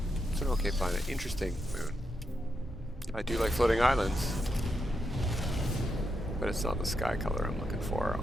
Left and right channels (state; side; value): normal; both; correlation 0.84